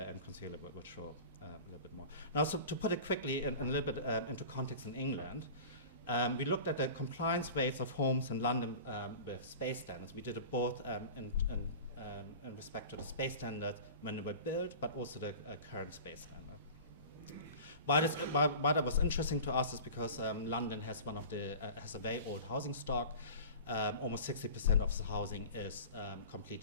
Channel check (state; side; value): inverted; both; correlation -0.37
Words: and Consuela will show a little bit more. Now, so to put it quickly and a little bit into context in England, we looked at the compliance rates of homes in London with space standards. We did it both in respect to the space standards when they were built, but also the current space standard. Why that was interesting to us is because London has has a very old housing stock. Almost 60% of the housing is